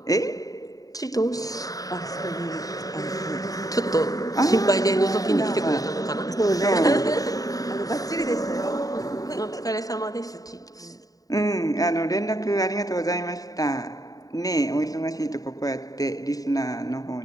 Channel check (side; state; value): right; late; 0.18 ms